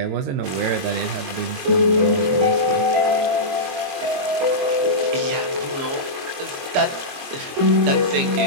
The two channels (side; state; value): left; late; 22 ms